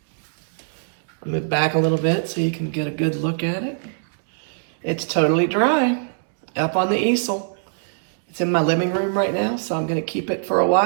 I'll move back a little bit so you can get a good look at it. It's totally dry up on the easel. It's in my living room right now, so I'm going to keep it for a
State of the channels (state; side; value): silent; left; digital silence